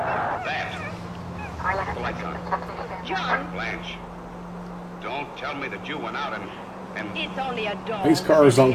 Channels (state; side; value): identical; both; correlation 1.00